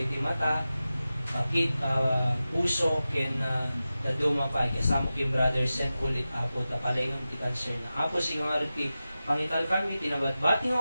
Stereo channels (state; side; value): inverted; both; correlation -0.94